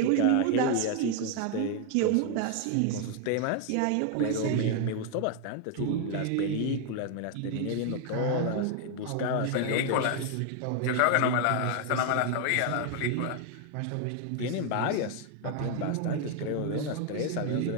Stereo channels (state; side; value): different; both; correlation 0.00